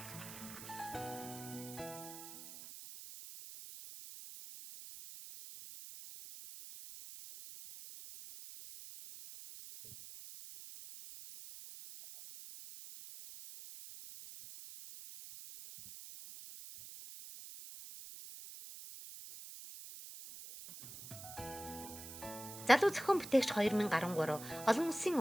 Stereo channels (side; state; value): right; noise; hiss, 13 dB below the sound